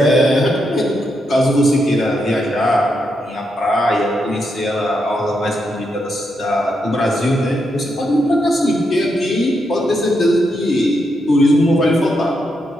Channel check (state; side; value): normal; both; correlation 0.82